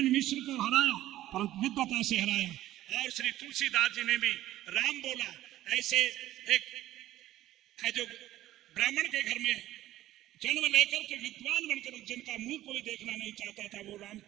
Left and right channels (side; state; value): left; quieter; 14.4 dB